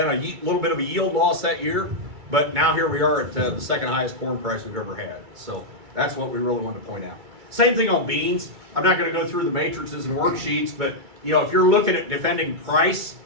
a little bit of a yield loss that year, but now here we are at the second highest corn price we've ever had. So that's what we really wanted to point out. Same thing on beans. I'm not going to go through the matrices and worksheets, but you know, if you're looking at defending price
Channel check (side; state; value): left; late; 2.3 ms